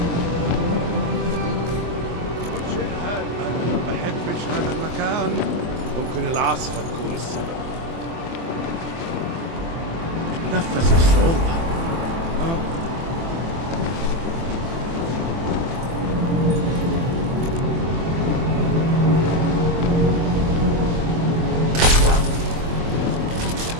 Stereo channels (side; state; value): left; late; 24 ms